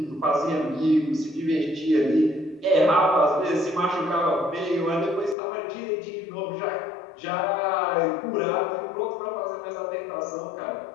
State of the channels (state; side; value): drops out; right; at 5.4 s